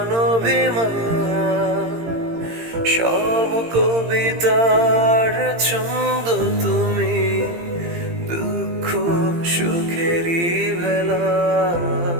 সব কবিতার ছন্দ তুমি, দুঃখ সুখেরই ভেলা।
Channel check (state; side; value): late; left; 18 ms